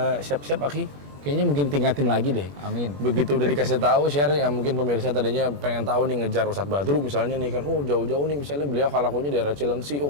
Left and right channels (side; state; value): left; late; 21 ms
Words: siap-siap Aki. Kayaknya mungkin tingkatin lagi deh. Amin. Begitu udah dikasih tahu share yang mungkin pemirsa tadinya pengen tahu nih ngejar Ustadz Badru misalnya nih kan, oh jauh-jauh nih misalnya beliau halakunya daerah Cilengsi,